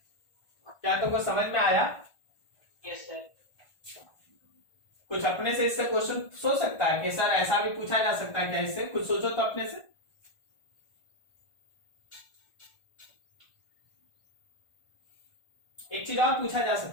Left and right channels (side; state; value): right; late; 1.4 ms